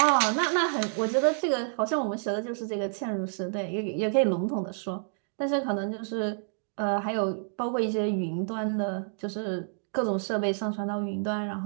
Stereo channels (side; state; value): left; silent; digital silence